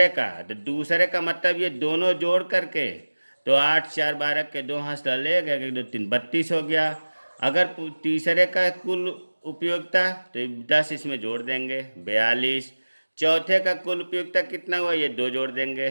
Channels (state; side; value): inverted; both; correlation -1.00